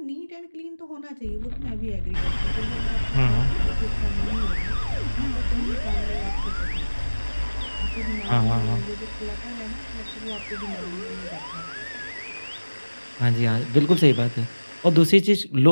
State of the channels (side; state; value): both; inverted; correlation -1.00